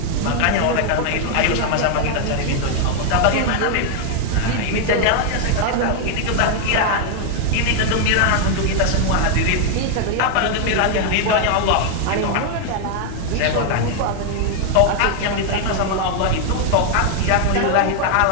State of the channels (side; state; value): both; different; correlation 0.00